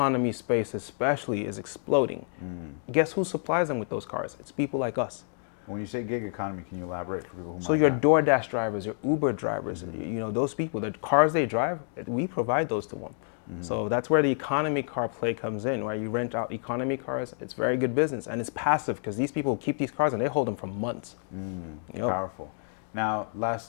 space especially is exploding. Guess who supplies them with those cars? It's people like us. When you say gig economy, can you elaborate for people who So might your not? DoorDash drivers, your Uber drivers, you know, those people, the cars they drive, we provide those to them. So that's where the economy car play comes in, where you rent out economy cars. It's very good business, and it's passive because these people keep these cars and they hold them for months. Yep. Powerful. Now, last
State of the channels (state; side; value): silent; right; digital silence